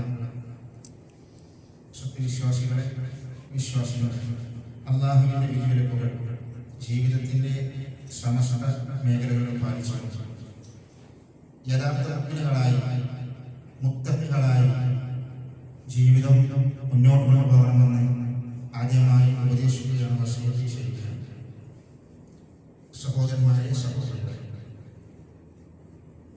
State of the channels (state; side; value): identical; both; correlation 1.00